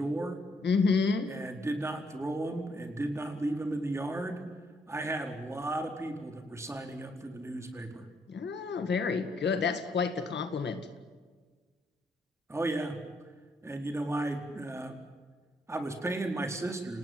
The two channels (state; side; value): normal; both; correlation 0.73